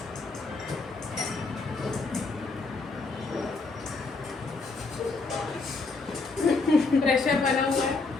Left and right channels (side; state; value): right; quieter; 3.8 dB